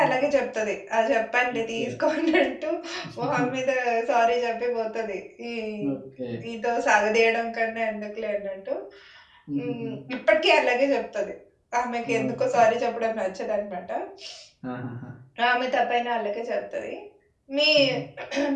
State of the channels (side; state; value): both; identical; correlation 1.00